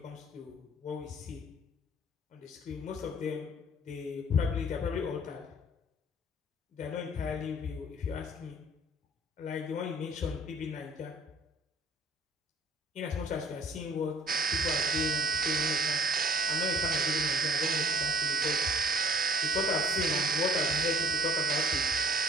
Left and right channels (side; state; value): both; normal; correlation 0.54